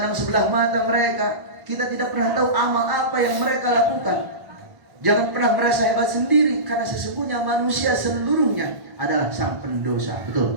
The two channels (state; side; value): late; left; 1.5 ms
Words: sebelah mata mereka. Kita tidak pernah tahu amal apa yang mereka lakukan. Jangan pernah merasa hebat sendiri, karena sesungguhnya manusia seluruhnya adalah sang pendosa.